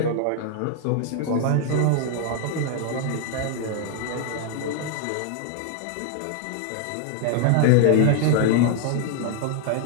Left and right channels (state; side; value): different; both; correlation 0.00